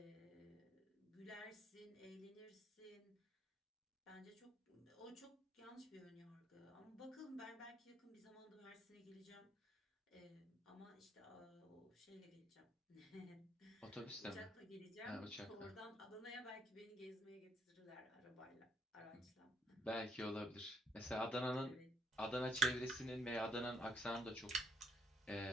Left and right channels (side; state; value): both; normal; correlation 0.68